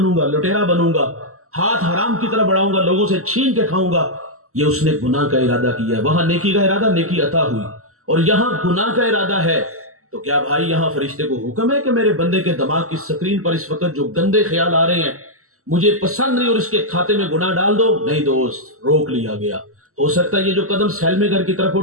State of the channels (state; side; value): late; left; 0.64 ms